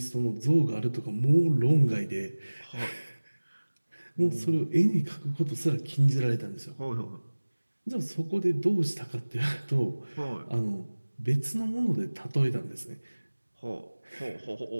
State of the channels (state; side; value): inverted; both; correlation -1.00